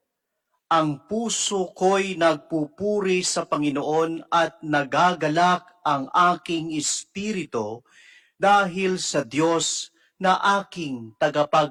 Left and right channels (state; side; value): identical; both; correlation 1.00